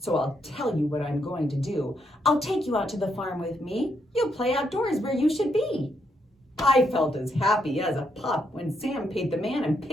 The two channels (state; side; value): normal; both; correlation 0.77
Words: I'll tell you what I'm going to do. I'll take you out to the farm with me. You'll play outdoors where you should be." I felt as happy as a pup when Sam paid the man and